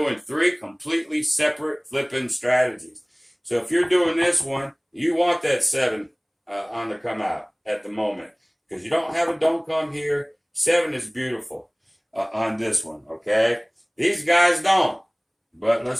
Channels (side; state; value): both; identical; correlation 1.00